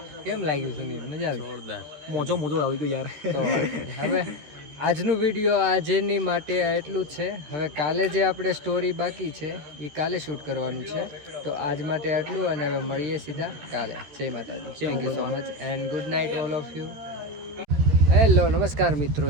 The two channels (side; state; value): left; late; 13 ms